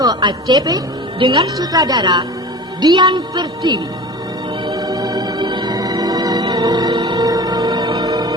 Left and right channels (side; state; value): both; normal; correlation 0.36